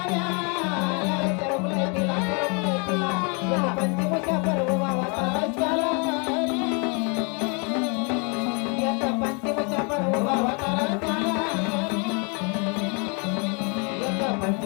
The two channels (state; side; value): quieter; right; 34.6 dB